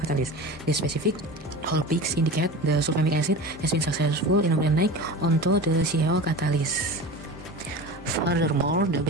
catalyst. The specific Hall peaks indicate the sulfamic acid has been successful in organic onto the CaO catalyst. Furthermore, the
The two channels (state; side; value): normal; both; correlation 0.32